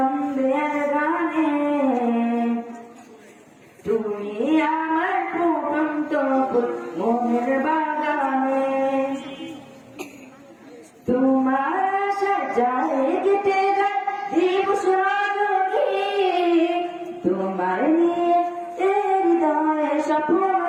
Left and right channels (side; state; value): both; identical; correlation 1.00